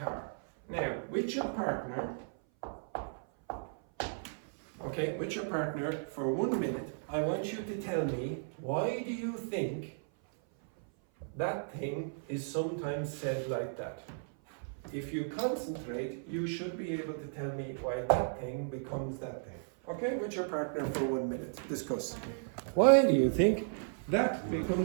Now, with your partner, okay, with your partner for 1 minute, I want you to tell me, why do you think that thing is sometimes said like that? If you concentrate, you should be able to tell me why that thing becomes that thing. Okay, with your partner for 1 minute, discuss. Why do you think that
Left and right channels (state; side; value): silent; left; 55 dB below the other